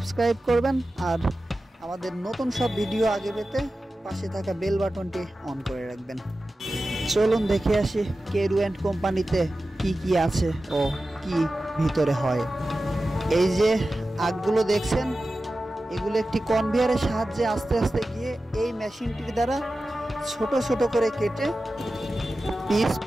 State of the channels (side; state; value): both; normal; correlation 0.94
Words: করবেন, আর আমাদের নতুন সব ভিডিও আগে পেতে পাশে থাকা বেল বাটনটি অন করে রাখবেন। চলুন দেখে আসি কেরু অ্যান্ড কোম্পানিতে কি কি আছে ও কি ভিতরে হয়। এই যে আগগুলো দেখছেন, এগুলো একটি কনভেয়ারের সাহায্যে আস্তে আস্তে গিয়ে এই মেশিনটির দ্বারা ছোট ছোট করে কেটে পিস